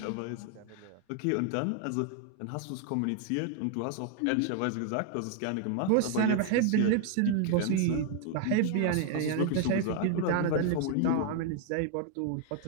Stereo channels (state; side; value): different; both; correlation 0.00